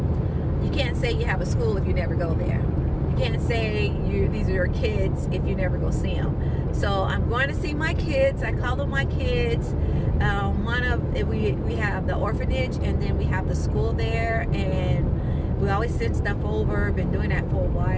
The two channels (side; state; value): both; identical; correlation 1.00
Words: you can't say you have a school if you never go there. You can't say these are your kids if you never go see them. So I'm going to see my kids. I call them my kids. We have the orphanage, and then we have the school there, and we always send stuff over. Been doing that for a